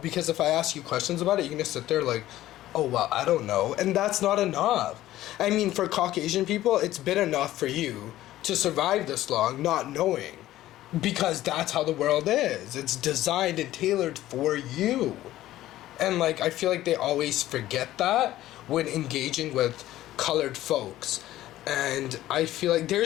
if I ask you questions about it, you're gonna sit there like, oh, well, I don't know. And that's not enough. I mean, for Caucasian people, it's been enough for you to survive this long not knowing. Because that's how the world is. It's designed and tailored for you. And, like, I feel like they always forget that when engaging with colored folks. And I feel like there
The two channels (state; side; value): quieter; right; 14.6 dB